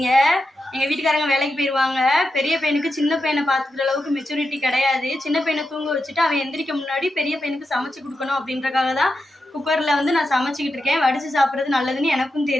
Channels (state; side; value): normal; both; correlation 0.88